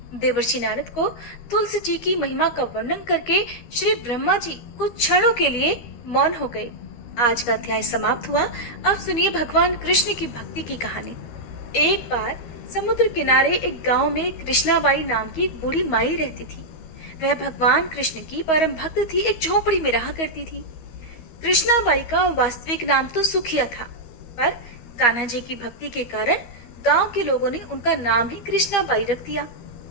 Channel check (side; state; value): right; late; 13 ms